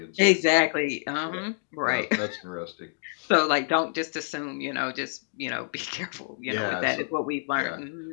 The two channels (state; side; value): silent; right; digital silence